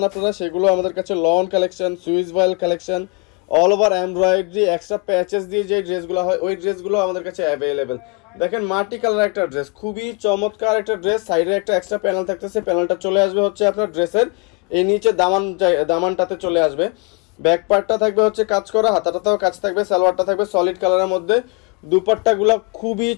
আপনারা সেগুলো আমাদের কাছে lawn collection, swiss voile collection, all over embroidery extra patches দিয়ে যে ড্রেসগুলো হয় ওই ড্রেসগুলো আমাদের কাছে অ্যাভেলেবেল। দেখেন মাটি কালার একটা ড্রেস, খুবই চমৎকার একটা ড্রেস, সাইডে একটা এক্সট্রা প্যানেল থাকতেছে, প্যানেলটা চলে আসবে হচ্ছে আপনার ড্রেসের এই নিচে দামানটাতে চলে আসবে। ব্যাক পার্টটা থাকবে হচ্ছে কাজ করা, হাতাটাতেও কাজ থাকবে, সালোয়ারটা থাকবে সলিড কালারের মধ্যে। দুপাট্টাগুলো খুবই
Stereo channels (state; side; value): quieter; right; 31.8 dB